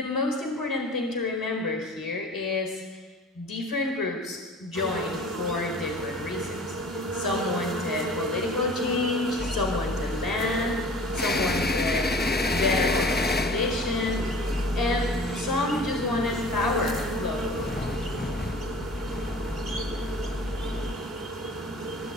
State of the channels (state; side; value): normal; both; correlation 0.43